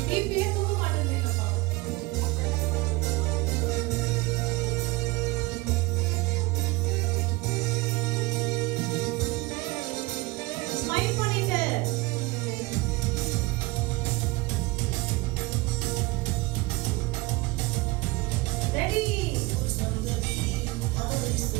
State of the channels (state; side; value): quieter; left; 22.3 dB